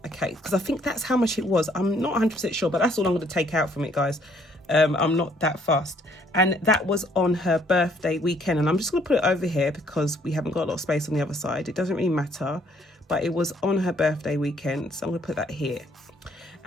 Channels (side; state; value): both; normal; correlation 0.65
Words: Okay, because I think that's how much it was. I'm not 100% sure, but that's all I'm going to take out from it, guys. I'm not that fast. And that was on her birthday weekend. And I'm just going to put it over here because we haven't got a lot of space on the other side. It doesn't really matter, but it was on her birthday weekend. So I'm going to put that here.